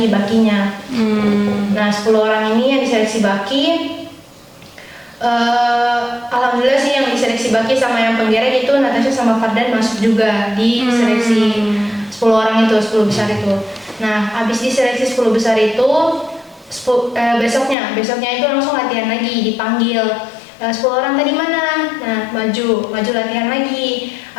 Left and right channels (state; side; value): drops out; right; at 17.8 s